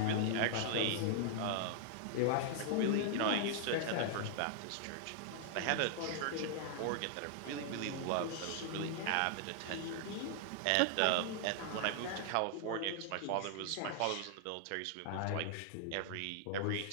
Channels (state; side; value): different; both; correlation -0.01